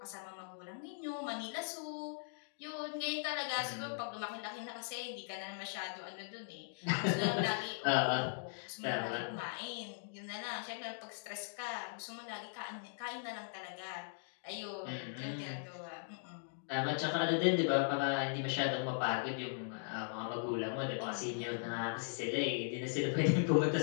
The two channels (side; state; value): right; silent; digital silence